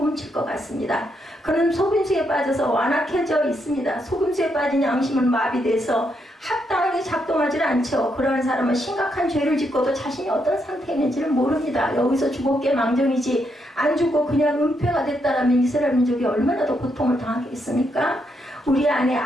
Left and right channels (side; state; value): both; normal; correlation 0.79